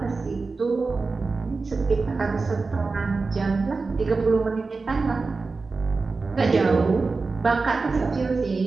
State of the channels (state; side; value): quieter; left; 4.1 dB